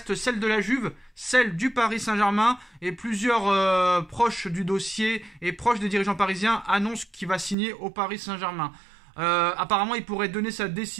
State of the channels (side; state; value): left; drops out; at 7.6 s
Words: celle de la Juve, celle du Paris Saint-Germain, et plusieurs proches du dossier et proches des dirigeants parisiens annoncent qu'il va signer au Paris Saint-Germain. Apparemment, il pourrait donner sa